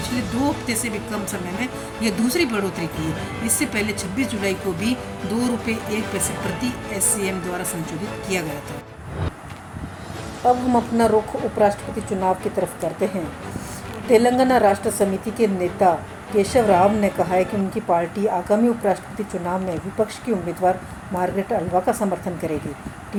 2 हफ्ते से भी कम समय में यह दूसरी बढ़ोतरी की है। इससे पहले 26 जुलाई को भी ₹2.01 प्रति एससीएम द्वारा संशोधित किया गया था। अब हम अपना रुख उपराष्ट्रपति चुनाव की तरफ करते हैं। तेलंगाना राष्ट्र समिति के नेता केशव राव ने कहा है कि उनकी पार्टी आगामी उपराष्ट्रपति चुनाव में विपक्ष की उम्मीदवार मार्गरेट अल्वा का समर्थन करेगी।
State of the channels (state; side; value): identical; both; correlation 1.00